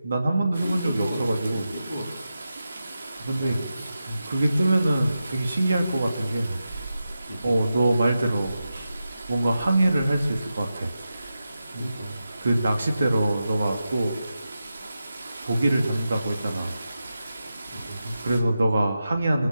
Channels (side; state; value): both; inverted; correlation -0.90